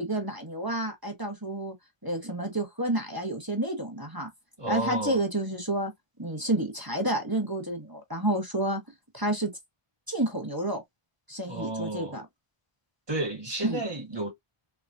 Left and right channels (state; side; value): late; left; 1.0 ms